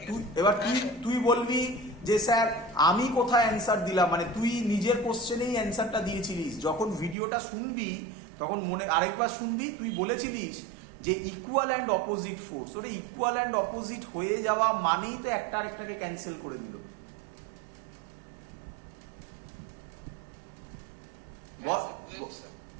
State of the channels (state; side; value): drops out; left; at 7.2 s